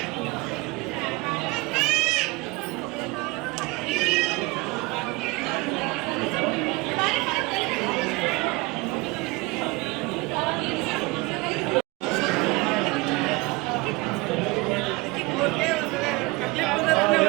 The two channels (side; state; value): left; quieter; 24.1 dB